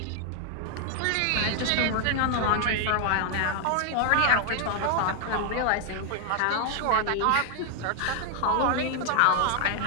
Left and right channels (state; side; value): different; both; correlation 0.00